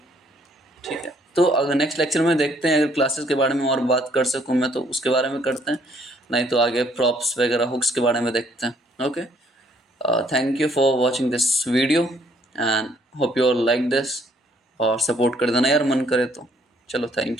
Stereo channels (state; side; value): normal; both; correlation 0.65